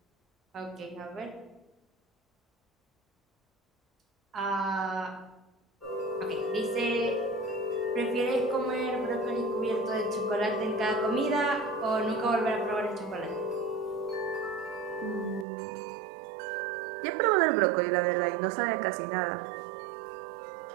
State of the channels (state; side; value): drops out; left; at 15.5 s